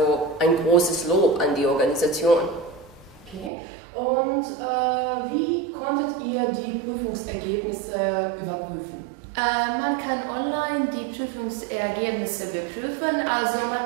ein großes Lob an die Organisation. Okay. Und wie konntet ihr die Prüfungsergebnisse überprüfen? Man kann online die Prüfungsergebnisse überprüfen, also man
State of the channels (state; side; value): drops out; left; at 3.5 s